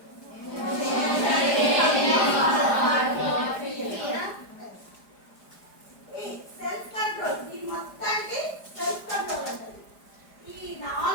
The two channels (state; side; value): late; right; 4.9 ms